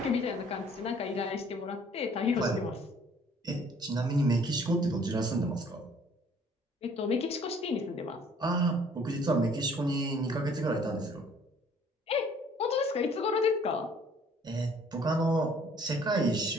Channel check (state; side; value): normal; both; correlation 0.57